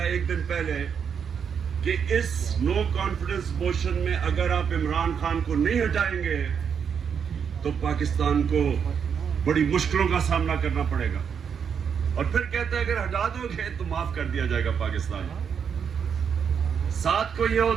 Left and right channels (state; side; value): quieter; left; 7.1 dB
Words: है एक दिन पहले कि इस नो कॉन्फिडेंस मोशन में अगर आप इमरान खान को नहीं हटाएंगे तो पाकिस्तान को बड़ी मुश्किलों का सामना करना पड़ेगा। और फिर कहता है अगर हटा दोगे तो माफ कर दिया जाएगा पाकिस्तान। 7 को ये